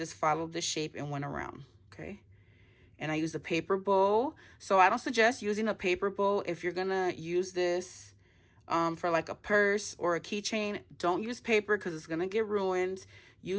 followed the shape and went around, okay? And I used a paper bow. So I don't suggest using a paper bow. If you're going to use this for like a purse or a keychain, don't use paper because it's going to get ruined.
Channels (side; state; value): both; identical; correlation 1.00